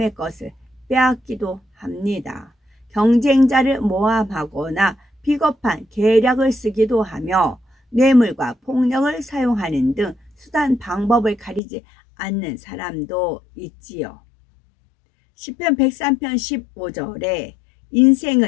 것을 빼앗기도 합니다. 경쟁자를 모함하거나 비겁한 계략을 쓰기도 하며 뇌물과 폭력을 사용하는 등 수단 방법을 가리지 않는 사람도 있지요. 시편 103편 15절에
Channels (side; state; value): right; drops out; at 11.6 s